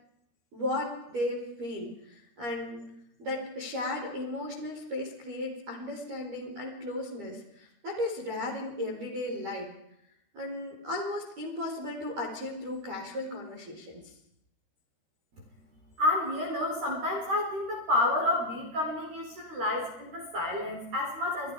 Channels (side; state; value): left; late; 13 ms